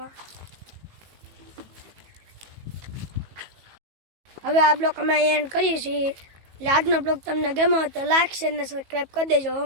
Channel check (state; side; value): late; left; 18 ms